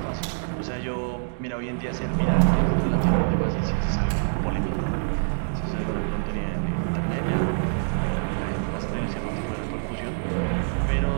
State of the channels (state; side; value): silent; left; digital silence